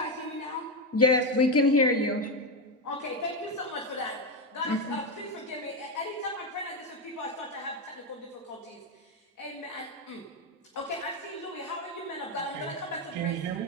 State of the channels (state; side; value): normal; both; correlation 0.10